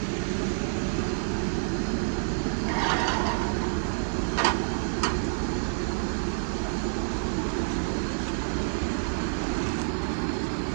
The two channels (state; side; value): silent; left; digital silence